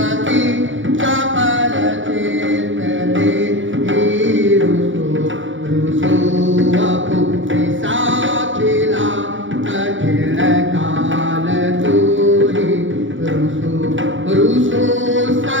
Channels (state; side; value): late; left; 0.56 ms